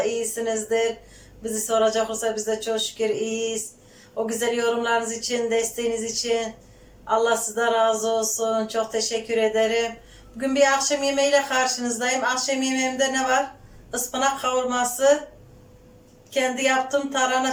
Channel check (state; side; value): identical; both; correlation 1.00